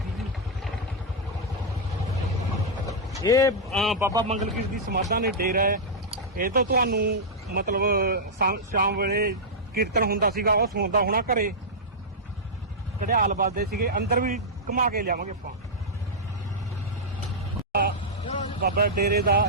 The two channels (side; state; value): both; normal; correlation -0.08